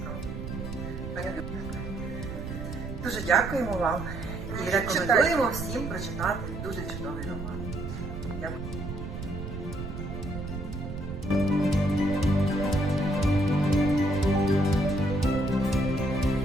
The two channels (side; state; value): right; noise; rumble, 7 dB below the sound